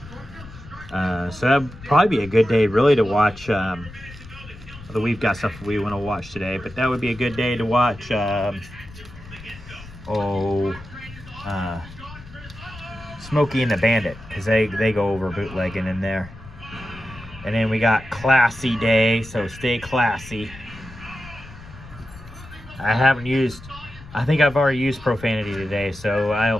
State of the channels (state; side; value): noise; left; rumble, 17 dB below the sound